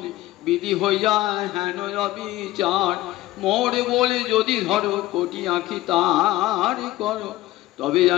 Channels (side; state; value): right; quieter; 16.6 dB